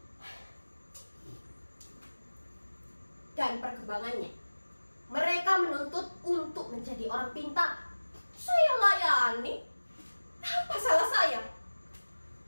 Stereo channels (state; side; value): inverted; both; correlation -1.00